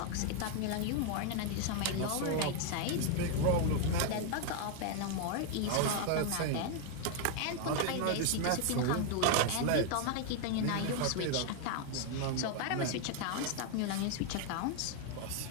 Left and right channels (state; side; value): different; both; correlation 0.01